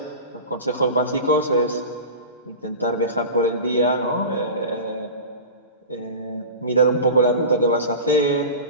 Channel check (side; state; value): both; inverted; correlation -0.32